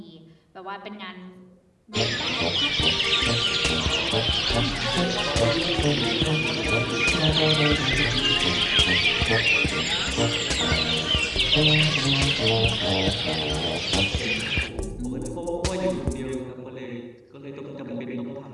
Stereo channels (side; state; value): both; identical; correlation 1.00